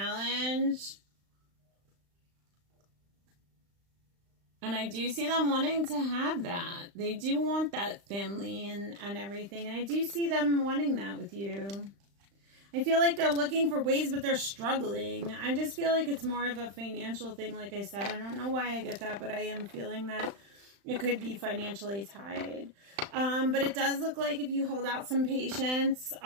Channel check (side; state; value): left; late; 35 ms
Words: And I do see them wanting to have that. They do want that family and everything. And I do see them wanting that with you. I feel like they're looking for ways, but they're struggling. I just feel like it's more of a financial thing, like I said. I don't know why I get that, but I am feeling that it could be financially tied. But it does look like if you hold out some patience,